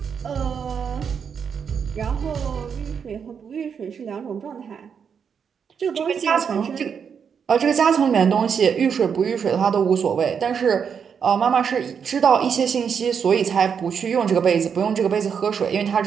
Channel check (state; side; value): quieter; left; 6.9 dB